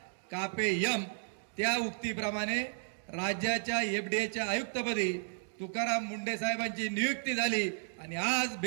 कापे यम. त्या उक्तीप्रमाणे राज्याच्या एफडीएच्या आयुक्तपदी तुकाराम मुंडे साहेबांची नियुक्ती झाली आणि आज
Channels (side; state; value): left; silent; digital silence